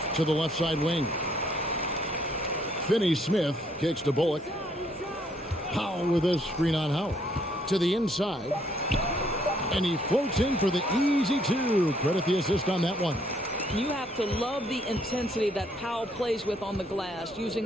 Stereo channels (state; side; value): normal; both; correlation 0.67